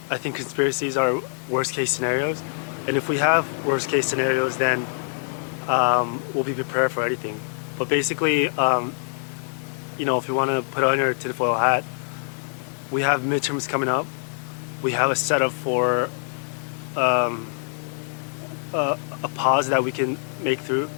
think conspiracies are worst case scenarios, and if we have worst case scenarios, then we'll be prepared for anything. But basically, if you want to put on your tinfoil hat, we have midterms coming up. We have a setup for a pause that we can make through.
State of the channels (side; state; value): right; silent; digital silence